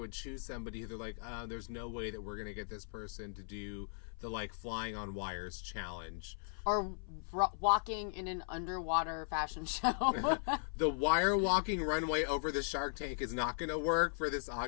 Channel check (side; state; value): right; silent; 53 dB below the other